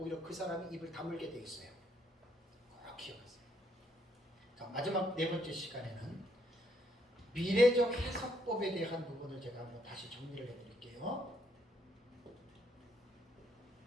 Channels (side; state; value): both; normal; correlation 0.72